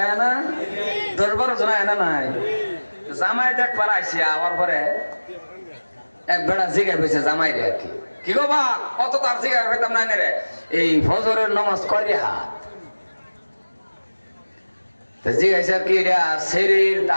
না 10-12 জন আয় না নাই জামাই দেখ পারাইছি আবার পরে এক বেড়া জিগাই পেয়েছে জামাই রে আর কি গো বা কত তার জিগাই হইতাম না রে এই ফজরের নামাজ করি হাত তো জিগাইছে আর কি এটা শরীর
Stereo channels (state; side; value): inverted; both; correlation -1.00